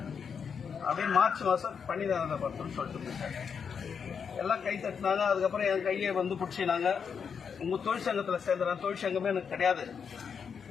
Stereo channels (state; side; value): quieter; right; 6.6 dB